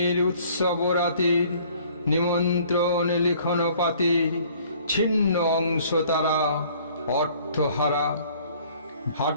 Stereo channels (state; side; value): inverted; both; correlation -0.56